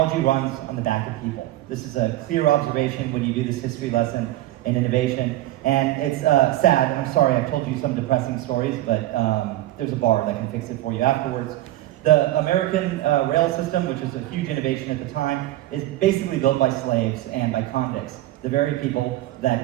runs on the back of people. This is a clear observation when you do this history lesson in innovation. And it's sad, I'm sorry, I've told you some depressing stories, but there's a bar that can fix it for you afterwards. The American rail system, which is a huge innovation at the time, is basically built by slaves and by convicts, the very people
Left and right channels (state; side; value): quieter; left; 15.4 dB